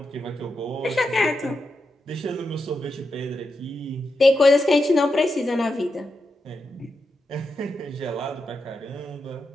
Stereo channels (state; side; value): normal; both; correlation 0.86